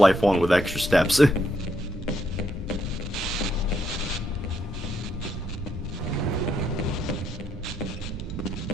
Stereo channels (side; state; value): both; normal; correlation 0.76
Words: 1 with extra steps.